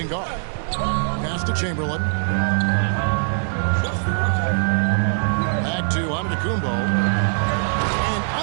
guard. Pass to Chamberlain. Back to Antetokounmpo. And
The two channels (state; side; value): silent; left; 63 dB below the other